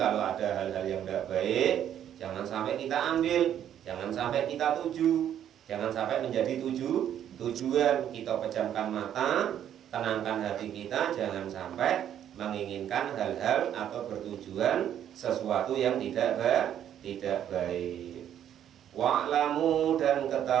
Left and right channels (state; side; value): quieter; left; 10.2 dB